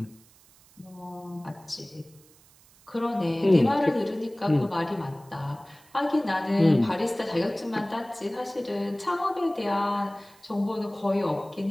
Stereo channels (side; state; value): right; noise; hiss, 27 dB below the sound